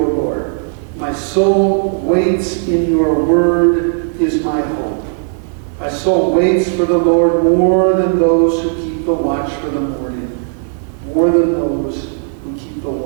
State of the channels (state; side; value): silent; left; 66 dB below the other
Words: Lord. My soul waits in your word is my hope. My soul waits for the Lord more than those who keep the watch for the morning. More than those who keep the